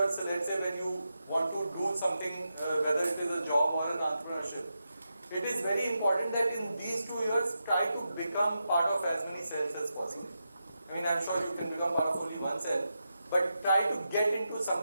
let's say when you want to do something, whether it is a job or an entrepreneurship, it is very important that in these 2 years, try to become part of as many cells as possible. I mean, I'm sure you can become part of only one cell, but try to get into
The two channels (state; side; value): inverted; both; correlation -0.87